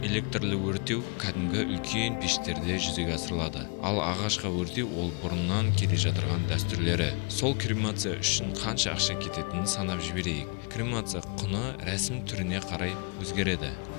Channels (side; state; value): right; quieter; 34.3 dB